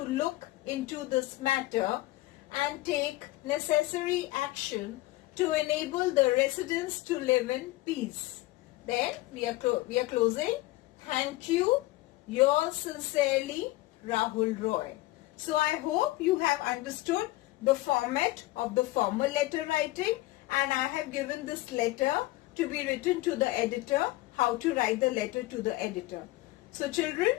look into this matter and take necessary action to enable the residents to live in peace. Then we are closing. Thank you. Yours sincerely, Rahul Roy. So I hope you have understood the format of the formal letter writing, and I have given this letter to be written to the editor, how to write the letter to the editor. So children,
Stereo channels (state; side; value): quieter; right; 18.7 dB